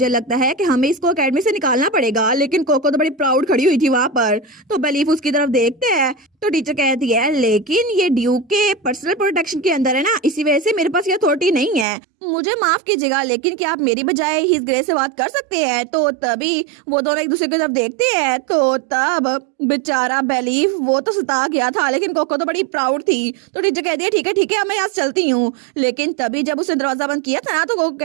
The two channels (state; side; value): drops out; left; at 11.9 s